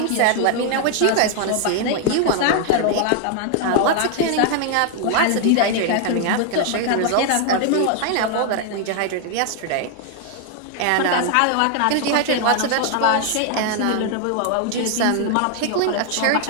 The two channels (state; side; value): different; both; correlation 0.00